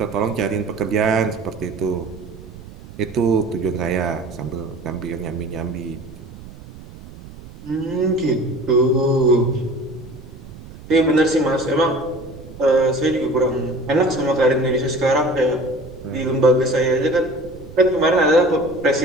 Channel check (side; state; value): right; noise; rumble, 17 dB below the sound